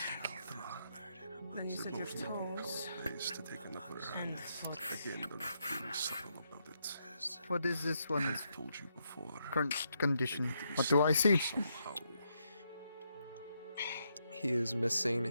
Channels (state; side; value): inverted; both; correlation -0.79